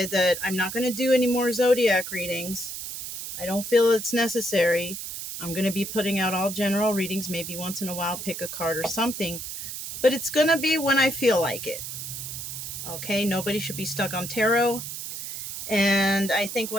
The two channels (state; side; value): noise; right; hiss, 7 dB below the sound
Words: that I'm not going to do any more zodiac readings. I don't feel it's necessary. I'm going to be putting out all general readings, maybe once in a while, pick a card or something. But it's going to be when I feel like it. Okay, nobody should be stuck on tarot. And I think